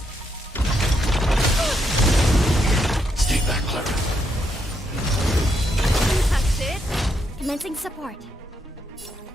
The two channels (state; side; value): normal; both; correlation 0.78